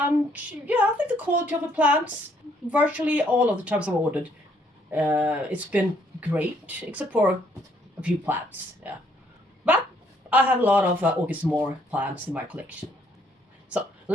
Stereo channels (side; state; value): both; normal; correlation 0.67